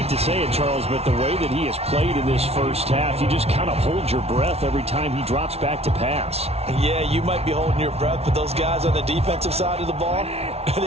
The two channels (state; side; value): late; left; 0.30 ms